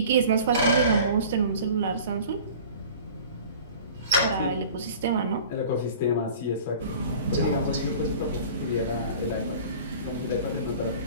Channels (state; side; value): inverted; both; correlation -0.43